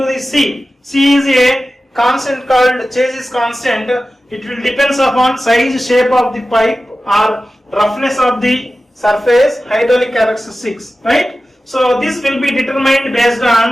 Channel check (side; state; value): both; normal; correlation 0.95